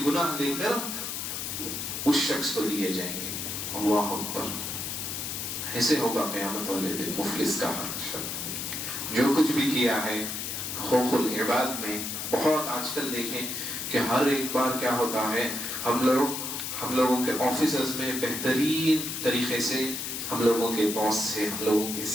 گناہ لے کر اس شخص کو دیے جائیں گے۔ اللہ اکبر۔ ایسے ہوگا قیامت والے دن مفلس کا شخص جو کچھ بھی کیا ہے حقوق العباد میں۔ بہت آج کل دیکھیں کہ ہر ایک بار کیا ہوتا ہے، ہم لوگوں کے آفیسز میں بہترین طریقے سے ہم لوگوں کے باس سے، ہم لوگوں کے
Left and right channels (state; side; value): noise; left; hiss, 4 dB below the sound